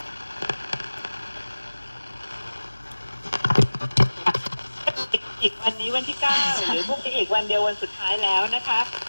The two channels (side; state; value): both; inverted; correlation -1.00